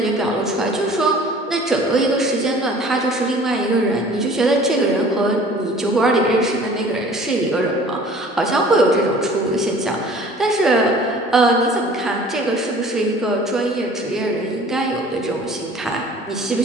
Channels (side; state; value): both; normal; correlation 0.48